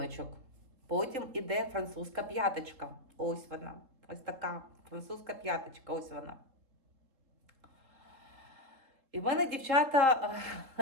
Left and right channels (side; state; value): left; late; 3.8 ms